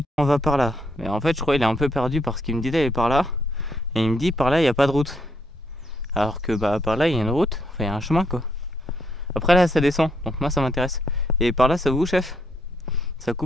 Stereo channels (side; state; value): both; normal; correlation 0.74